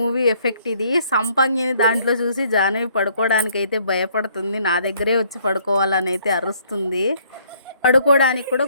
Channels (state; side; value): inverted; both; correlation -0.64